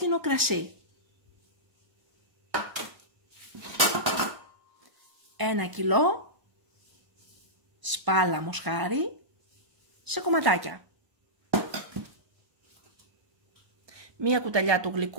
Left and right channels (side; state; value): left; late; 1.0 ms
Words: κρασί. 1 κιλό σπάλα μοσχάρι σε κομματάκια. 1 κουταλιά του